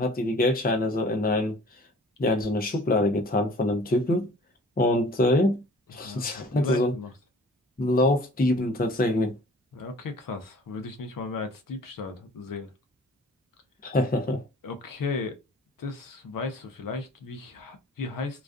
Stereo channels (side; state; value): both; normal; correlation 0.49